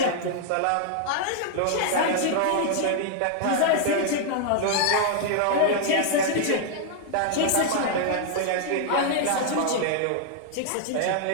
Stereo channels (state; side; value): different; both; correlation 0.00